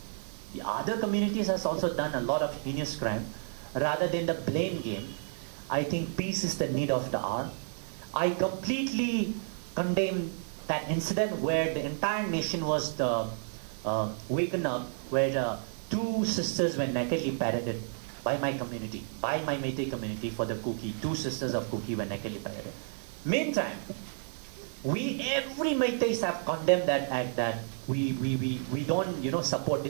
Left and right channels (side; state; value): left; silent; 57 dB below the other